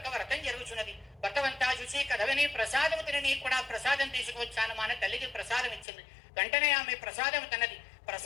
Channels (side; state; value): right; drops out; at 5.9 s